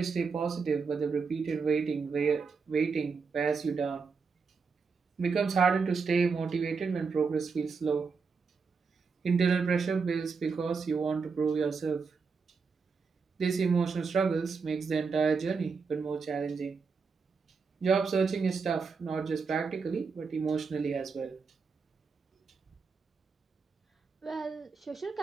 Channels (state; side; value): quieter; left; 5.1 dB